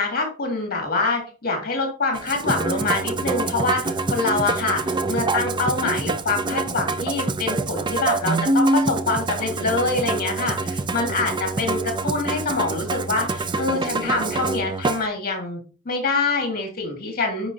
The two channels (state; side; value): normal; both; correlation 0.14